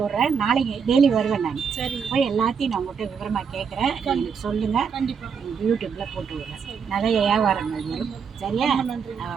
விட்றேன். நாளைக்கு டெய்லி வருவேன் நான். சரி, போய் எல்லாத்தையும் நான் உங்கள்கிட்ட விவரமாக கேட்குறேன். எனக்கு சொல்லுங்கள். கண்டிப்பாக யூடியூப்பில் போட்டு விட்றேன். நிறைய வியாபாரங்கள் வரும், சரியா? நன்றி.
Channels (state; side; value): quieter; left; 6.4 dB